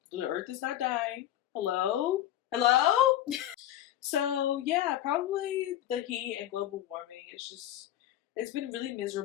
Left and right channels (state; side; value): quieter; right; 12.4 dB